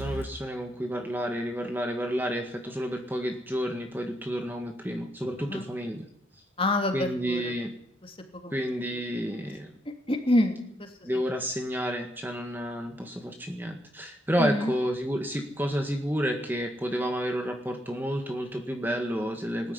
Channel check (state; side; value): normal; both; correlation 0.77